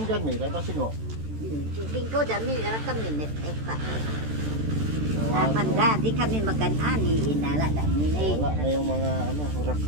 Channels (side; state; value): left; late; 13 ms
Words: dyan, may tapasin mo. Tingin ko dami narakam minit. Napanda, di kami maganani. Inala dami na Wala na yung mga